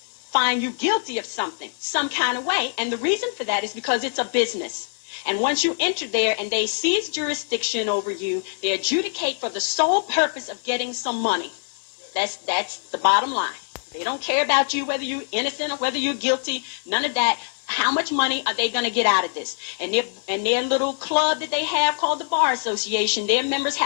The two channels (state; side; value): silent; right; 60 dB below the other